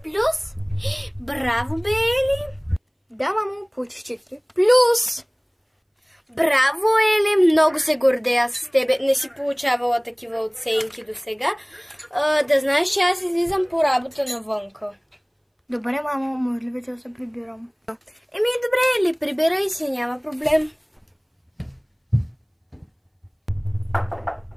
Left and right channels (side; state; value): both; identical; correlation 1.00